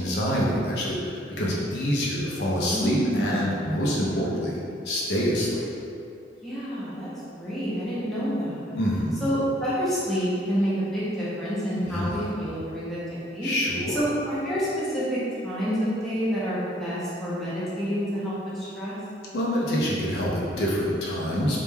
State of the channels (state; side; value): normal; both; correlation 0.62